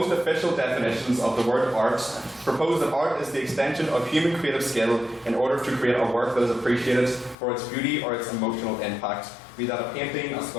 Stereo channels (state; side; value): drops out; right; at 7.4 s